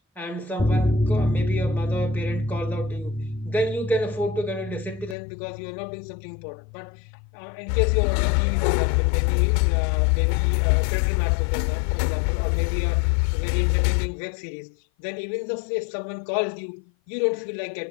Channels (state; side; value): drops out; right; at 5.2 s